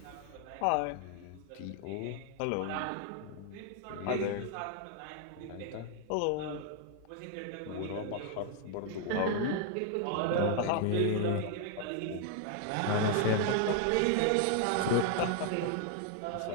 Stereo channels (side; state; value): both; different; correlation 0.00